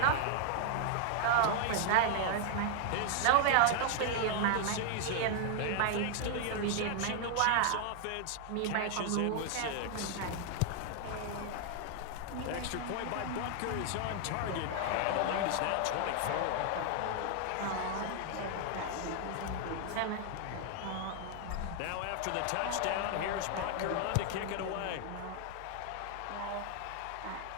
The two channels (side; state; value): both; different; correlation 0.00